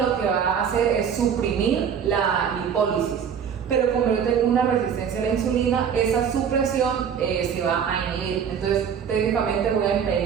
que va a hacer es suprimir la lipólisis. Pero como yo tengo una resistencia a la insulina, esa supresión se va a inhibir. Entonces, técnicamente voy a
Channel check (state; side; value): quieter; left; 7.6 dB